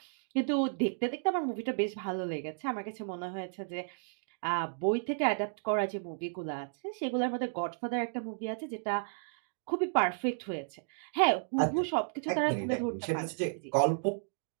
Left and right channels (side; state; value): left; silent; digital silence